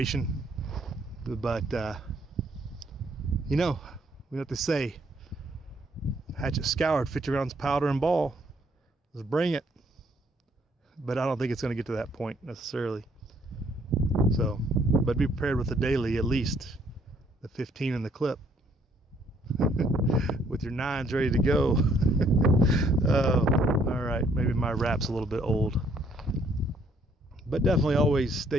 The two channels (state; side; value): normal; both; correlation 0.66